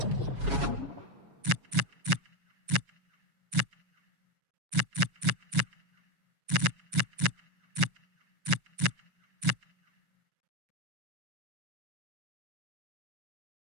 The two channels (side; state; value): left; late; 7.2 ms